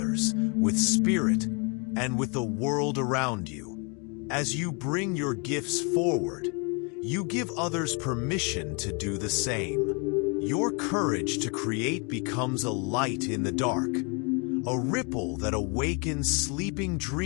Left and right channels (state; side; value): quieter; right; 33.9 dB